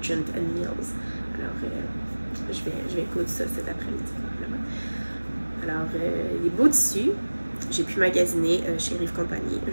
and Mills. Alors, je vais coudre ça cet après-midi, probablement. Alors, les beaux tissus, j'ai pu magasiner chez Rive Compagnie.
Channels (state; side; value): inverted; both; correlation -1.00